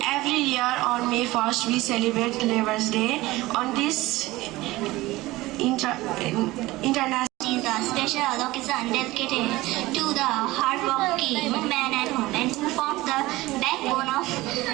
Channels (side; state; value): left; quieter; 19.0 dB